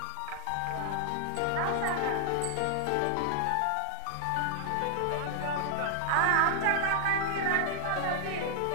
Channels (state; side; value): different; both; correlation 0.00